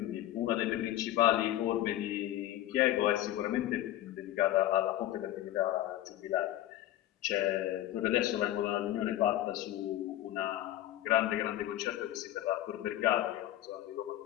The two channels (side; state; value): right; quieter; 13.9 dB